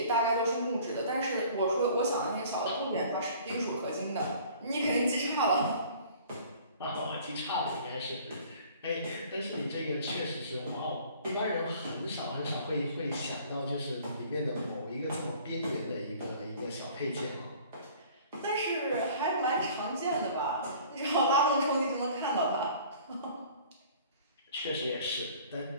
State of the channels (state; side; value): inverted; both; correlation -0.51